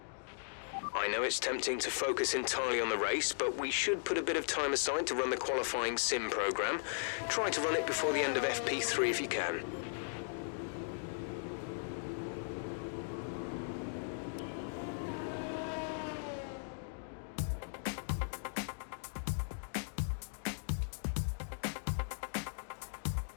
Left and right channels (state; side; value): silent; right; digital silence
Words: I know it's tempting to focus entirely on the race, but we should put a bit of time aside to run the qualifying sim program. Try to run it before the end of FP3 if you can.